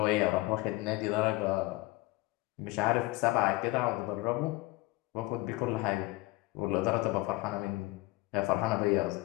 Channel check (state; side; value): quieter; right; 21.0 dB